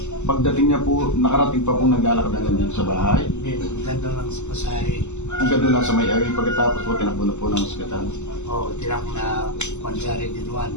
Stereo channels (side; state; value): right; late; 0.83 ms